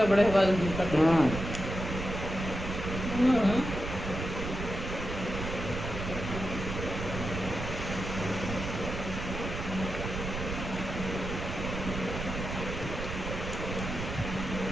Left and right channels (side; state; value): right; noise; rumble, 5 dB below the sound